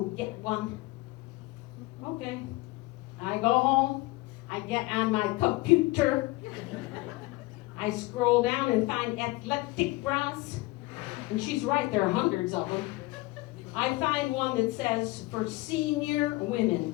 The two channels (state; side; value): quieter; right; 21.3 dB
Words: get one." Okay. I go home, I get on my computer, I scroll down and find athletic bras, and she's right, there are hundreds of them. I find one that says, "For senior